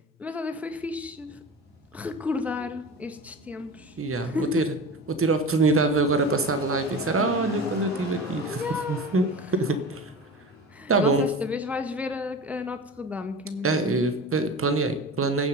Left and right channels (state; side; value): normal; both; correlation 0.32